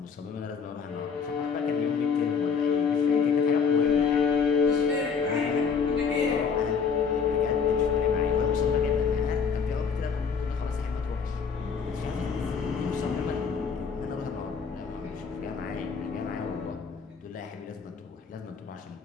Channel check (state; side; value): quieter; right; 6.1 dB